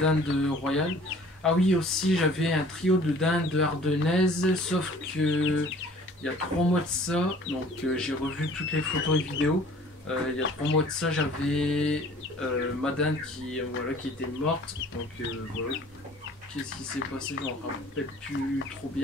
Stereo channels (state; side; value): normal; both; correlation 0.50